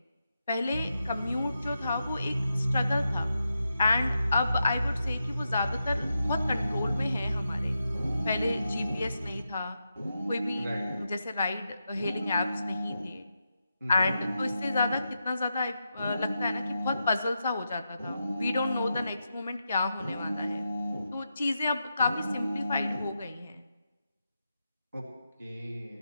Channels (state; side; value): inverted; both; correlation -0.87